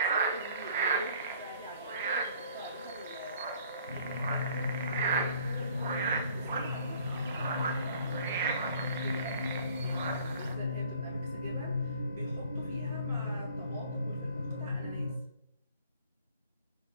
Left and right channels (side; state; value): both; inverted; correlation -0.55